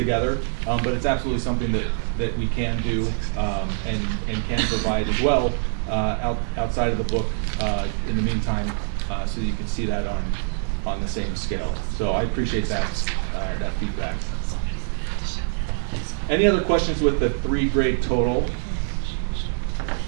But it's absolutely something that we can do and can provide as well outside of the book in the meantime, so that you can see that on the same scale. So I appreciate that feedback. Any other questions with the 3-grade total?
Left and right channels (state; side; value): silent; left; digital silence